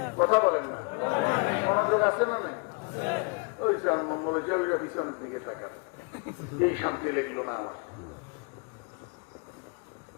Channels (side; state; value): right; quieter; 33.4 dB